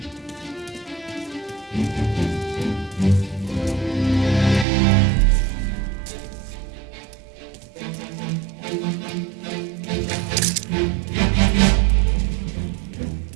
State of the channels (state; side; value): drops out; left; at 4.7 s